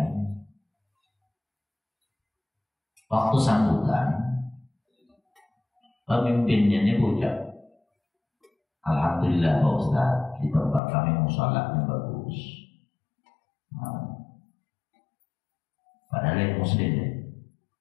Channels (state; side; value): drops out; right; at 10.8 s